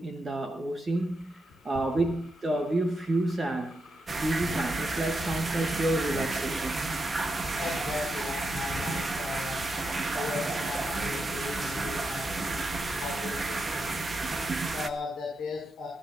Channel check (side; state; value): both; normal; correlation 0.85